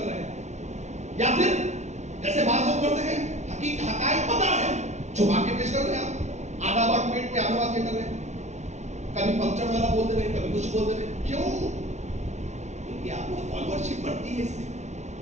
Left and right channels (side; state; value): left; late; 0.33 ms